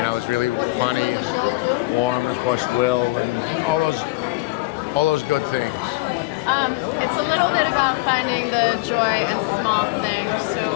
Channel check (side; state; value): right; quieter; 22.0 dB